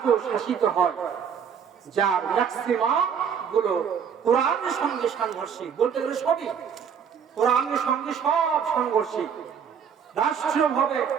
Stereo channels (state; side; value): quieter; left; 7.4 dB